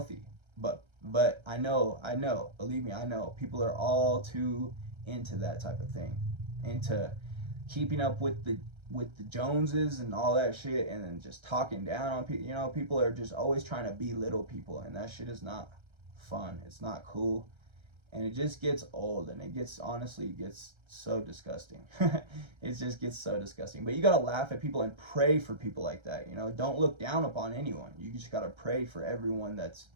But I know, believe me, I know people are all too into that type of thing, into keeping up with the Joneses and all that shit, and then just talking down on people. People are just always trying to belittle people, and that shit is not fun. It's not cool, and it just gets old, and honestly gets so disgusting. It just gets so disgusting. But you gotta laugh at people and pray for people like that. Don't look down upon anyone. You just gotta pray for everyone that's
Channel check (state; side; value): late; left; 1.3 ms